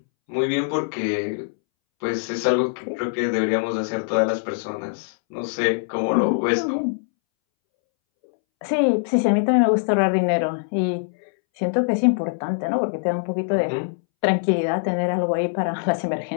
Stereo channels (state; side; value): silent; right; 64 dB below the other